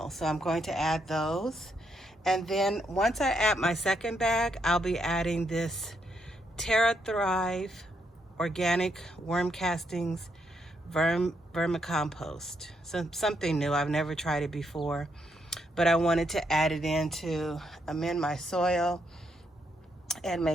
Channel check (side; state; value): both; normal; correlation 0.77